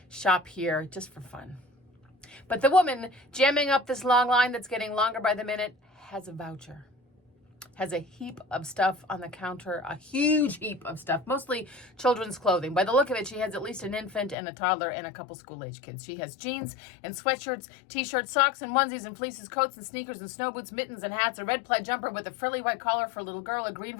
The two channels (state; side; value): drops out; right; at 14.4 s